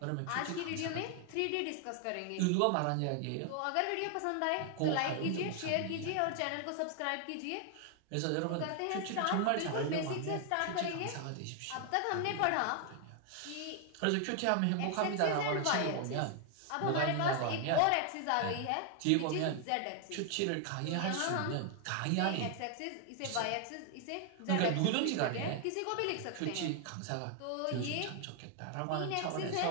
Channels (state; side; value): different; both; correlation 0.00